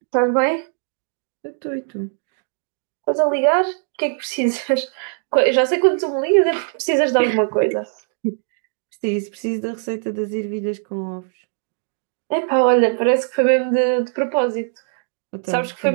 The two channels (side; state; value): left; silent; digital silence